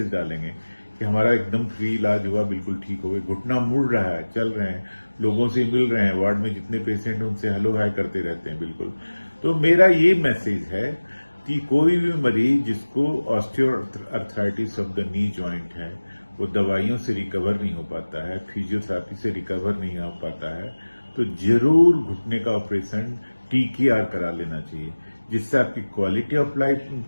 डालेंगे कि हमारा एकदम फ्री इलाज हुआ, बिल्कुल ठीक हो गए, घुटना मुड़ रहा है, चल रहे हैं, लोगों से मिल रहे हैं, वार्ड में जितने पेशेंट हैं उनसे हेलो हाय करते रहते हैं बिल्कुल। तो मेरा ये मैसेज है कि कोई भी मरीज जिसको osteoarthritis of the knee joint है, वो दवाइयों से रिकवर नहीं हो पाता है, फिजियोथेरेपी से रिकवर नहीं हो पाता है, तो जरूर घुटने का ऑपरेशन TKR करा लेना चाहिए, जिससे आपकी क्वालिटी ऑफ लाइफ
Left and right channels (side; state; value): both; inverted; correlation -1.00